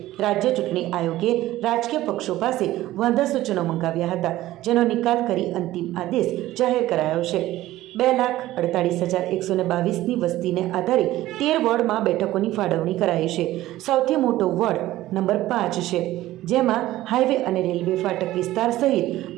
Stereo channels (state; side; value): quieter; left; 15.6 dB